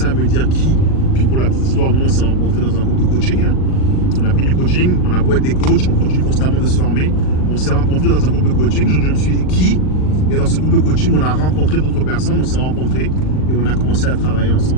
à me dire qui, puis pour la petite histoire, nous on s'est rencontrés dans un groupe de coaching. On a pris du coaching, on a beau être des coachs, on continue constamment de se former. On s'est rencontrés dans un groupe de coaching, donc je me suis dit qui. Et dans ce groupe de coaching, on a rencontré d'autres personnes, on s'est rencontrés et on a commencé à travailler ensemble.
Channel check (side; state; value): right; late; 39 ms